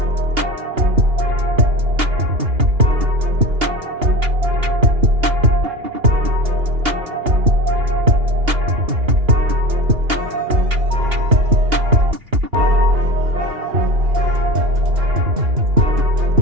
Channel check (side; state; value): left; late; 2.8 ms